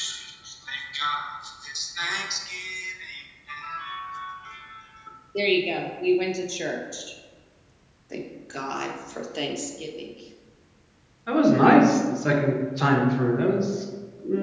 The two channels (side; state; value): both; identical; correlation 1.00